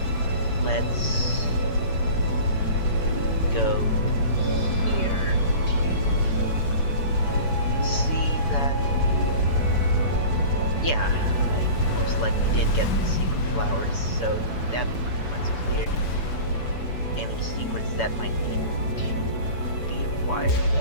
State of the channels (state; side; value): late; right; 7.0 ms